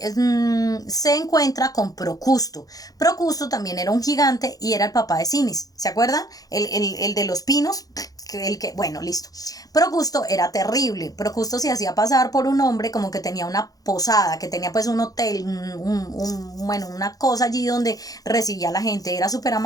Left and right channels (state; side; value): late; right; 0.18 ms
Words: encuentra con Procusto. Procusto también era un gigante y era el papá de Sinis. ¿Se acuerdan? El de los pinos. Bueno, listo. Procusto era terrible. Procusto se hacía pasar por un hombre como que tenía una posada, que tenía pues un hotel, bueno, una cosa allí donde recibía a la gente. Era súper